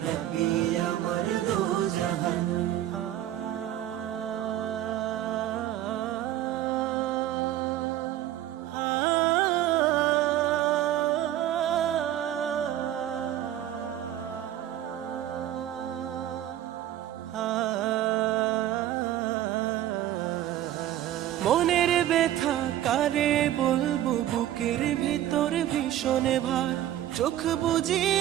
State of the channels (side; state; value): left; quieter; 12.6 dB